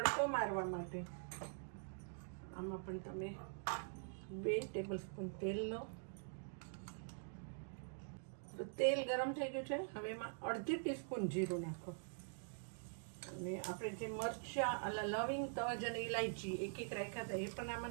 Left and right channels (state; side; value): silent; left; digital silence